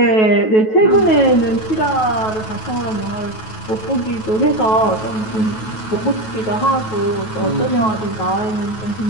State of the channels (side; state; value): right; late; 9.2 ms